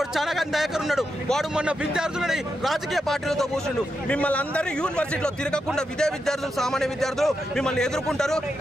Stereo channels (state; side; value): normal; both; correlation 0.86